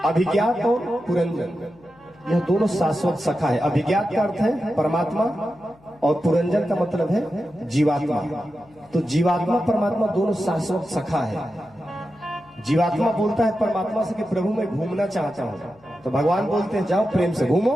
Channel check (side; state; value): left; noise; hum, 29 dB below the sound